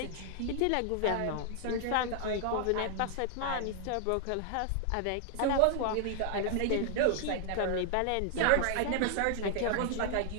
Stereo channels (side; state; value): both; different; correlation 0.00